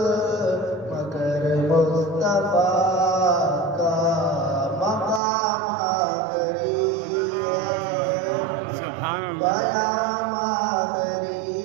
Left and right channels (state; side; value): drops out; left; at 5.2 s